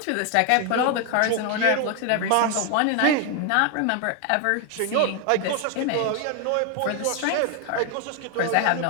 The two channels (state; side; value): different; both; correlation 0.01